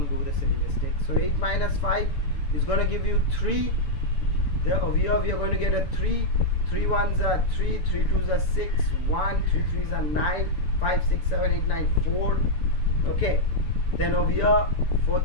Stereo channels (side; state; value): right; late; 6.9 ms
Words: do the silly mistake. So 8 minus 5 is going to give you 3. Over here we are going to get a 3. 3 1s are 3. 3 2s are 6. 1. 3 3s are 9. 5 6 7 8 9 4. Okay, then over here 4